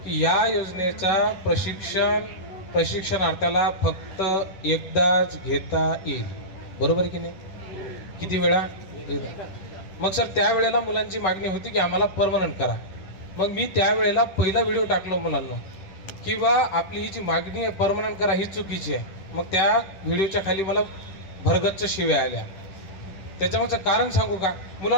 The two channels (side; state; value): right; late; 10 ms